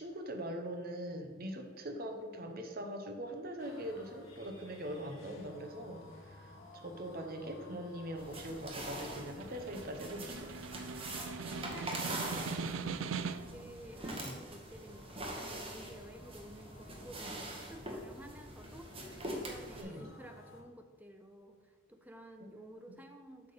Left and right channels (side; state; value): both; normal; correlation 0.30